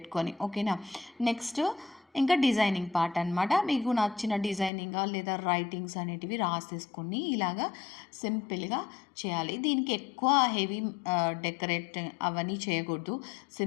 ఓకేనా? నెక్స్ట్ ఇంకా డిజైనింగ్ పార్ట్ అనమాట. మీకు నచ్చిన డిజైనింగ్ లేదా రైటింగ్స్ అనేటివి రాసేసుకొని ఇలాగా సింపుల్గా చేయాలి. దీనికి ఎక్కువ హెవీ డెకరేట్ అవన్నీ చేయకూడదు.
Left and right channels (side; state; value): right; drops out; at 4.7 s